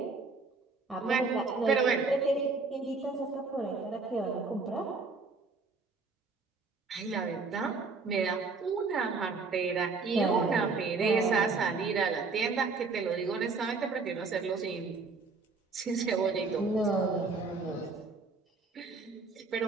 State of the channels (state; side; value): quieter; left; 4.2 dB